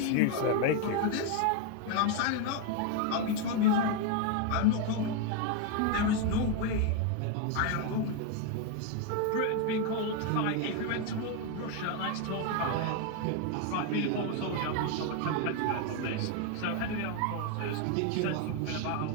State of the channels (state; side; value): different; both; correlation 0.01